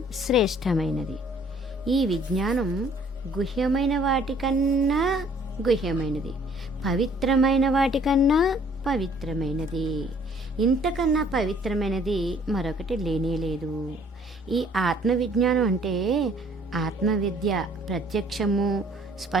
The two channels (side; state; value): both; normal; correlation 0.58